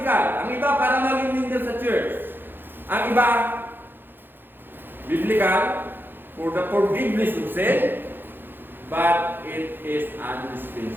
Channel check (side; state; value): left; late; 0.098 ms